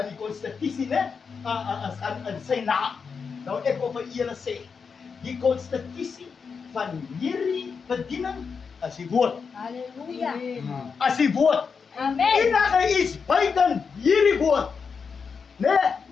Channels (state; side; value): quieter; right; 5.7 dB